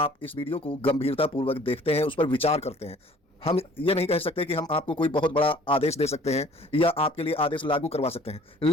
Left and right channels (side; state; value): both; normal; correlation 0.53